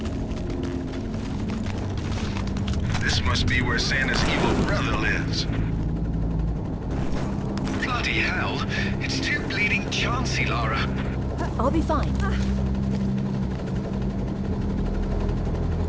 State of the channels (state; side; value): identical; both; correlation 1.00